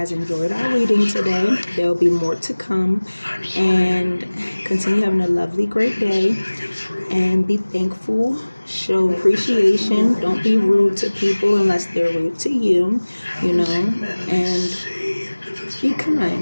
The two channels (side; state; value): both; inverted; correlation -1.00